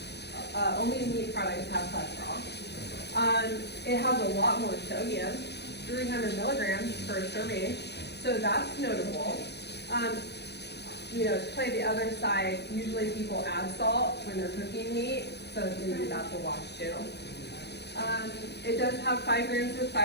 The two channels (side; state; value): right; late; 0.49 ms